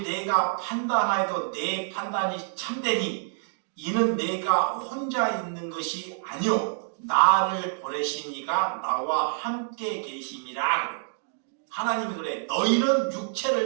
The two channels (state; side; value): silent; left; digital silence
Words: 내가 판단하여도 내 판단이 참되니 이는 내가 혼자 있는 것이 아니요 나를 보내신 이가 나와 함께 계심이라 그래. 하나님이 그래. 너희는